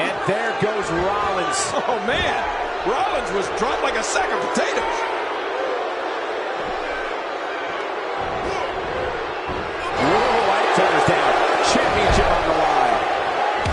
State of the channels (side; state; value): both; identical; correlation 1.00